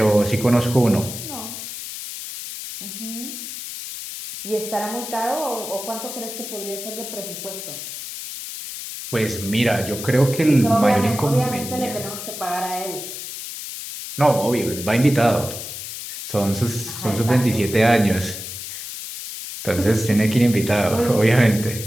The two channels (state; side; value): noise; left; hiss, 9 dB below the sound